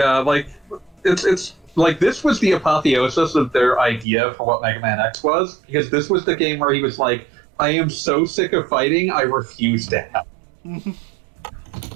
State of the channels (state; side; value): drops out; left; at 4.0 s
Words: like it's like this was the apotheosis of their idea for what Mega Man X was, because this was the game where he was like, I am so sick of fighting, I refuse to help.